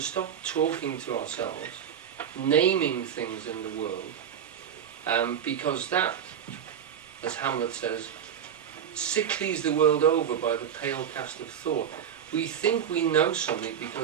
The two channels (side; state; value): left; quieter; 8.6 dB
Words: stop talking to ourselves, naming things in the world, because that, as Hamlet says, sicklies the world over by the pale cast of thought. We think we know something